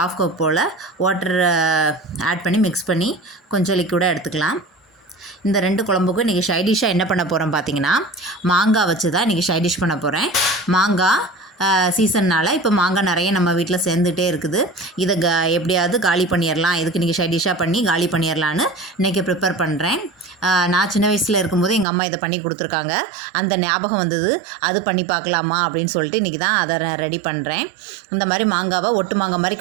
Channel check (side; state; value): left; drops out; at 21.9 s